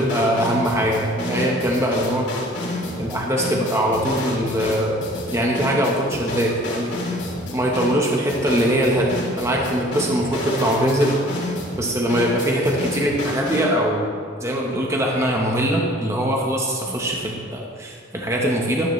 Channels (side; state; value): both; normal; correlation 0.51